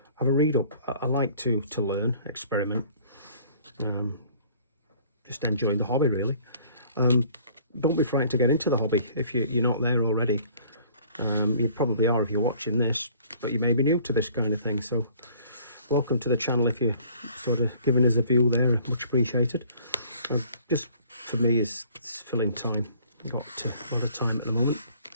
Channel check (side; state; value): both; inverted; correlation -0.54